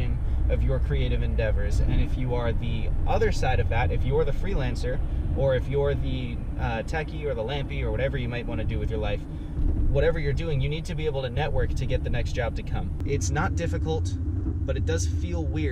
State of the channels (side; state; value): both; identical; correlation 1.00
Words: of your creative endeavors. And if you are the other side of that, if you're the freelancer, or if you're the techie or the lampy or whatever you might want to do with your life, whatever you're doing, you need to be able to network to get the next job to come. It's not difficult, but it does feel